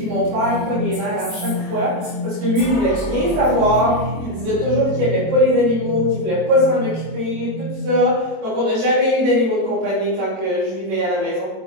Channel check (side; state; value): left; late; 26 ms